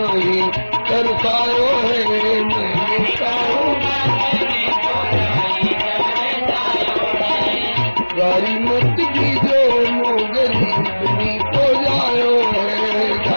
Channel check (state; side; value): inverted; both; correlation -1.00